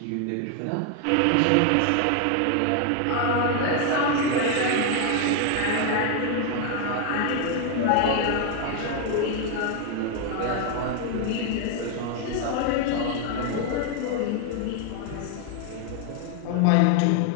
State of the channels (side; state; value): both; different; correlation 0.01